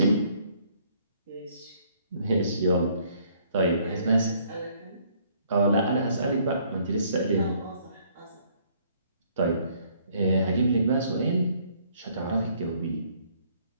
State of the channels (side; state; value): both; inverted; correlation -0.64